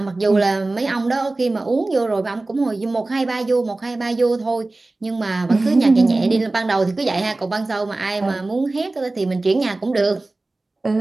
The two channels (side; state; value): left; quieter; 3.1 dB